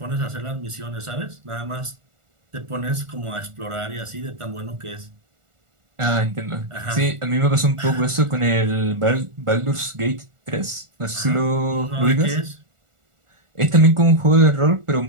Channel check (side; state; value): left; late; 1.4 ms